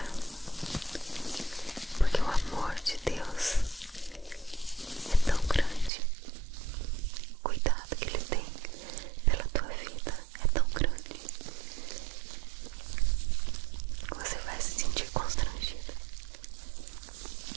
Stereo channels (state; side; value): drops out; left; at 5.9 s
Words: porque o amor de Deus é tão grande, o cuidado que Ele tem pela tua vida é tão grande, você vai se sentir constrangido.